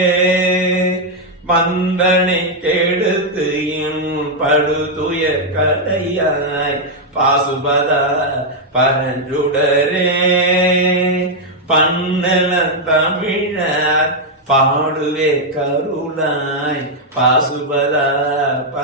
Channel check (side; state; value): both; normal; correlation -0.01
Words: மந்தனை கெடுத்து என் படுதுயர் கலையாய் பாசுபதா பரஞ்சுடரே பன்னல தமிழர் பாடுவே கருளாய் பாசுபதா